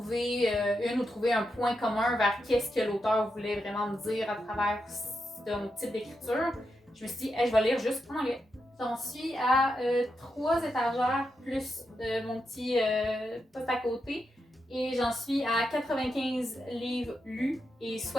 une ou trouver un point commun vers qu'est-ce que l'auteur voulait vraiment me dire à travers son type d'écriture, je me suis dit, hey, je vais lire juste en anglais. J'en suis à 3 étagères plus mon petit poste à côté et j'en suis à 95 livres lus et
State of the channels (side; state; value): both; normal; correlation 0.86